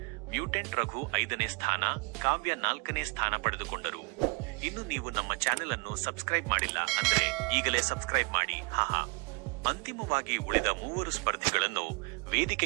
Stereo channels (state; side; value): quieter; left; 32.9 dB